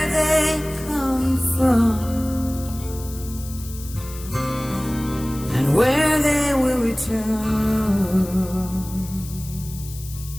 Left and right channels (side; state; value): left; noise; hiss, 15 dB below the sound